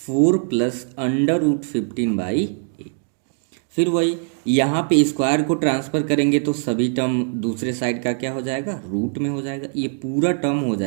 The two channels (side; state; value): left; silent; 56 dB below the other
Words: प्लस √15/8। फिर वही यहाँ पे स्क्वायर को ट्रांसफ़र करेंगे तो सभी टर्म दूसरे साइड का क्या हो जाएगा, रूट में हो जाएगा, ये पूरा टर्म हो